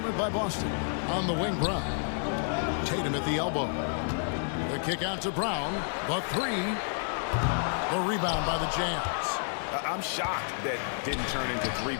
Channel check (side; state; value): right; silent; digital silence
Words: by Boston. On the wing, Brown. Tatum at the elbow. The kick out to Brown. The 3. The rebound by the Jazz. I'm shocked that didn't turn into 3